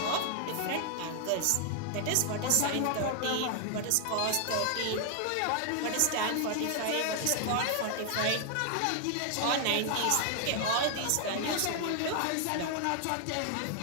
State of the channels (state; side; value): different; both; correlation 0.00